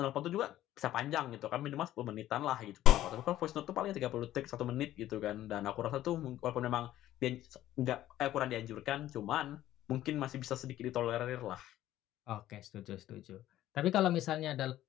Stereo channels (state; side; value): quieter; right; 13.7 dB